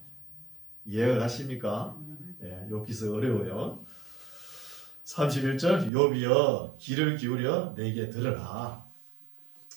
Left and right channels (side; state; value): left; drops out; at 5.9 s